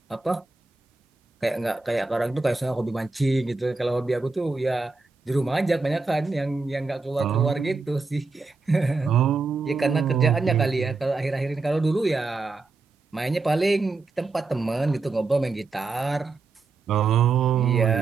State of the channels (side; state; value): left; quieter; 4.0 dB